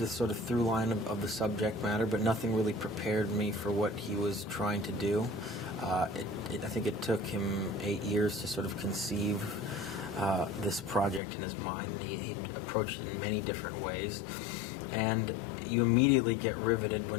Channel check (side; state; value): right; drops out; at 11.2 s